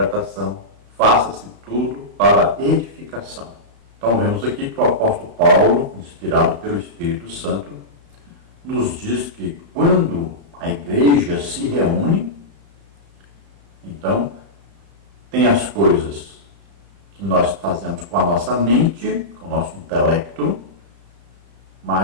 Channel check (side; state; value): left; late; 34 ms